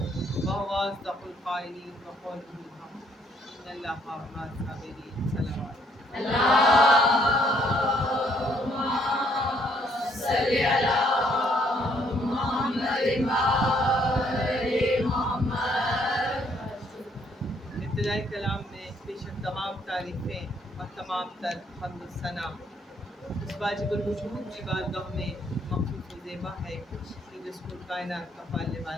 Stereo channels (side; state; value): both; normal; correlation 0.67